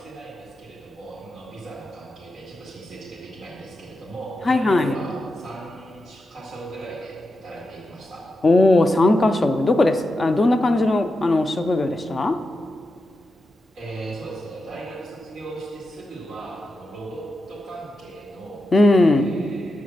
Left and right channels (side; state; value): both; normal; correlation 0.89